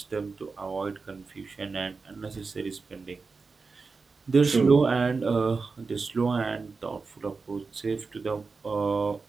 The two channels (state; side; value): quieter; left; 4.4 dB